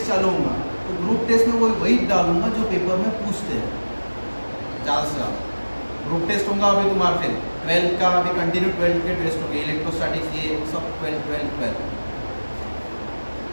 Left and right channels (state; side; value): inverted; both; correlation -1.00